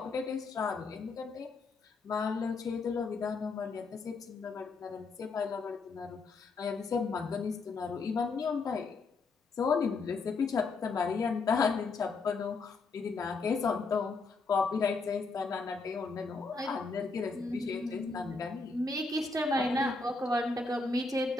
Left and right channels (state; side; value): quieter; right; 3.9 dB